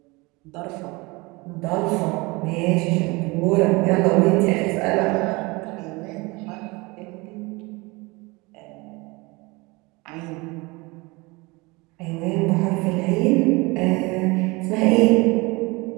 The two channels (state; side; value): quieter; left; 24.8 dB